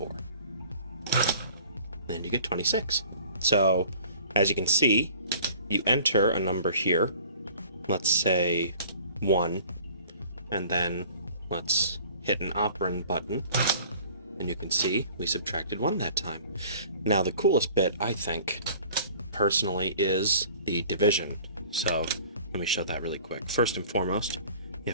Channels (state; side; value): inverted; both; correlation -0.49